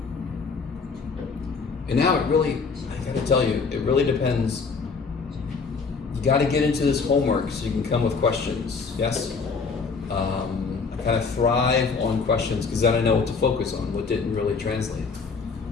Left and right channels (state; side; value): quieter; right; 4.9 dB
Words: And now I gotta tell you, it really depends. You gotta get into this homework so you can come with questions, yes? I kind of thrive on questions because then I know what to focus on, what didn't really translate.